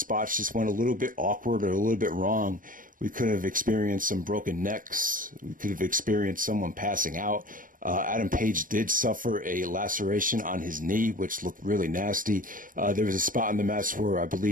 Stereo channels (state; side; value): late; left; 0.40 ms